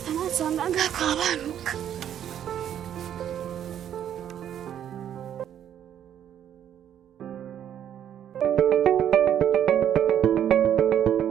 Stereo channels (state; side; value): quieter; left; 10.0 dB